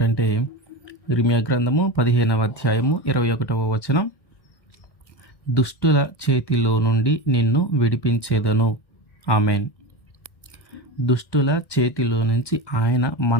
ఇర్మీయా గ్రంథము 15వ అధ్యాయము 21వ వచనం. దుష్టుల చేతిలో నుండి నిన్ను విడిపించేదను. ఆమెన్. దుష్టుల చేతిలో నుంచి ఆయన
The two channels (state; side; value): late; right; 1.2 ms